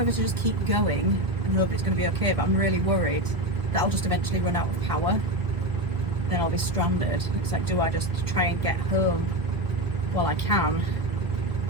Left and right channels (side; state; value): left; late; 1.9 ms